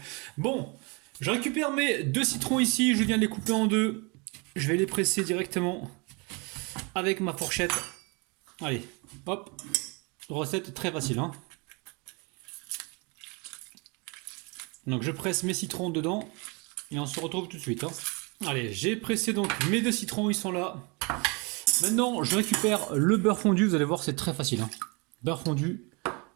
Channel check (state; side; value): quieter; left; 30.3 dB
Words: Bon, je récupère mes 2 citrons ici, je viens de les couper en deux. Je vais les presser directement avec ma fourchette. Allez, hop. Recette très facile, hein. Donc je presse mes citrons dedans et on se retrouve tout de suite, hein. Allez, j'ai pressé donc mes 2 citrons, ils sont là. Maintenant, je récupère le beurre fondu. Vous allez voir, c'est très facile, hein. Beurre fondu.